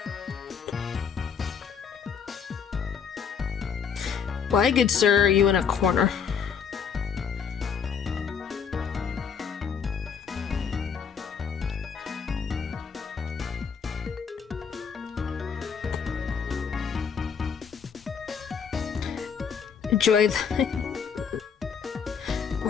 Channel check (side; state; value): right; quieter; 6.7 dB